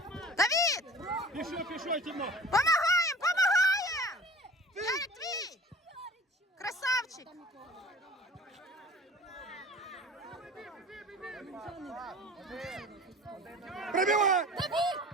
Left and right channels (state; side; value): normal; both; correlation 0.43